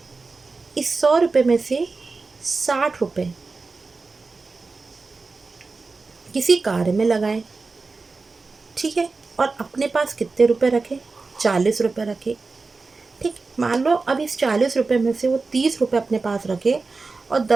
इस 100 रुपये में से 60 रुपये किसी कार्य में लगाए। ठीक है, और अपने पास कितने रुपए रखे? 40 रुपये रखे। ठीक, मान लो अब इस 40 रुपये में से वो 30 रुपये अपने पास रखे और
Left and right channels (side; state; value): left; quieter; 4.0 dB